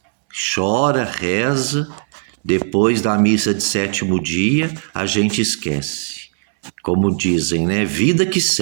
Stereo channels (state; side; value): silent; left; 67 dB below the other